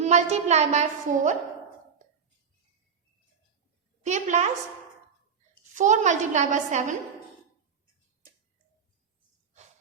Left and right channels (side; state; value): left; quieter; 6.6 dB